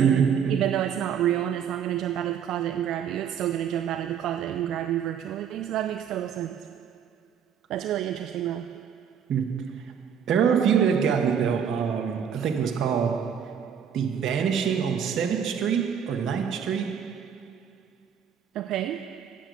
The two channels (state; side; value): quieter; left; 7.9 dB